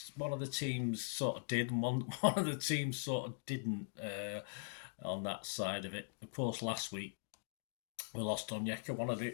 one of the teams sort of did and one of the teams sort of didn't on that side of it. Of course, last week we lost Onyeka, one of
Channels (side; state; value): right; silent; digital silence